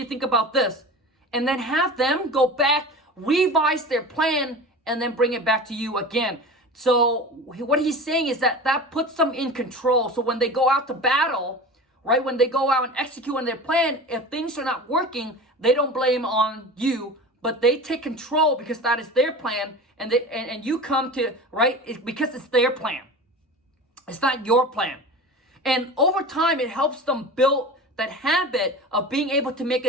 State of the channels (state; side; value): normal; both; correlation 0.33